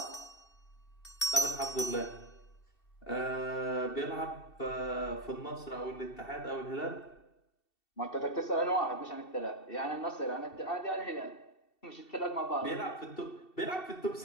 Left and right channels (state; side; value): late; right; 2.7 ms